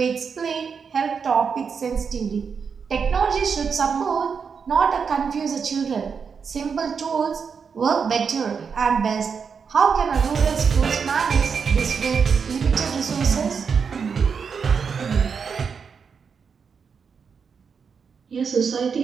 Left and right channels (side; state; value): left; quieter; 6.1 dB